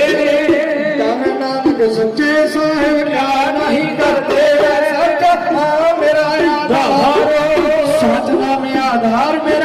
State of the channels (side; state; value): both; identical; correlation 1.00